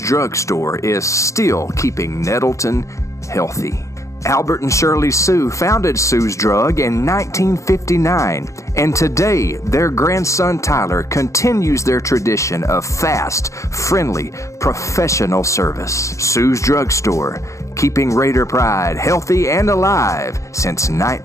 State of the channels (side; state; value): right; late; 0.15 ms